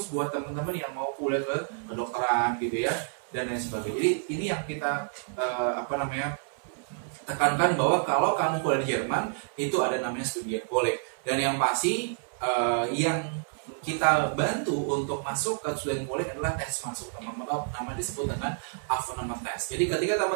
buat teman-teman yang mau kuliah ke kedokteran gitu ya, dan lain sebagainya. Jadi ini yang kita tekankan bahwa kalau kamu kuliah di Jerman itu ada namanya Studienkolleg. Dan yang pasti yang kita bantu untuk masuk ke Studienkolleg adalah tes masuk, teman-teman. Nama disebut dengan Aufnahmetest. Jadi ketika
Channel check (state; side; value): silent; left; 59 dB below the other